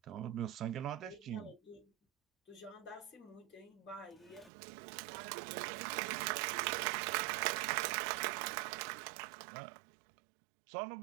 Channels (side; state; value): left; drops out; at 4.5 s